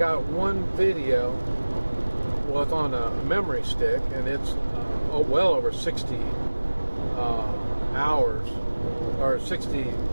one video. Well, it's on a memory stick, and it's well over 60 hours or 60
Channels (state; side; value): inverted; both; correlation -1.00